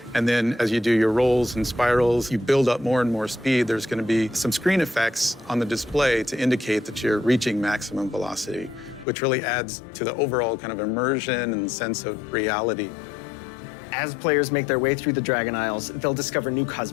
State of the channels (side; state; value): right; drops out; at 9.1 s